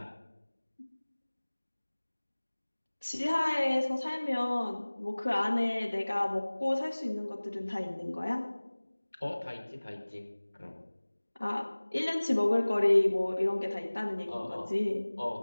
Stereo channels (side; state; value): both; inverted; correlation -1.00